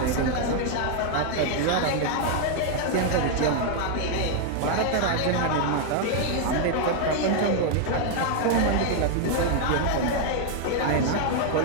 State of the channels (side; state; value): both; different; correlation 0.00